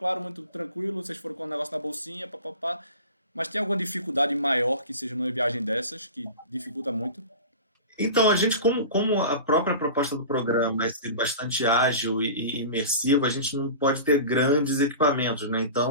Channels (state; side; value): inverted; both; correlation -0.35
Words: muito tranquilo, vocês foram com um negócio na bolsinha, papapá, mas tem alguma dificuldade maior que seja numa viagem dessas, que dificulta muito? Então, a gente, como a própria proposta do programa é ser bastante ágil e imersiva, a gente não pode ter grandes equipamentos, né?